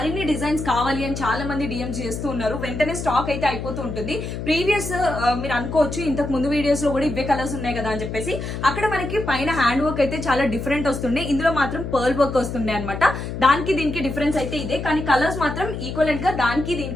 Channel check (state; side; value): noise; left; hum, 6 dB below the sound